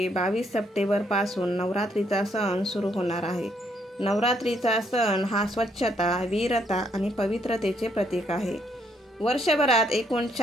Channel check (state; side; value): normal; both; correlation 0.71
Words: 22 सप्टेंबरपासून नवरात्रीचा सण सुरू होणार आहे। नवरात्रीचा सण हा स्वच्छता, वीरता आणि पवित्रतेचे प्रतीक आहे। वर्षभरात एकूण